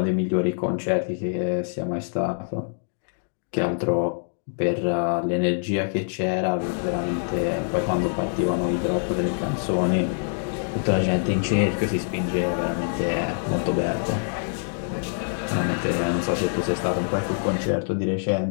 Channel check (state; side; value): silent; right; digital silence